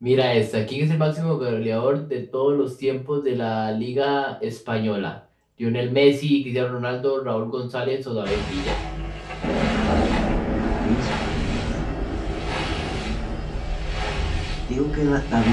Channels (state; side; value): identical; both; correlation 1.00